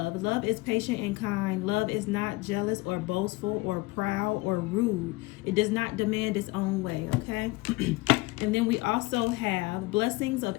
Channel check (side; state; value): right; quieter; 22.2 dB